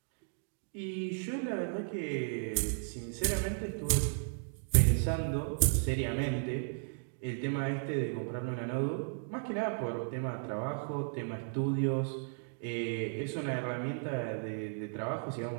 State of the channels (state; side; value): silent; left; digital silence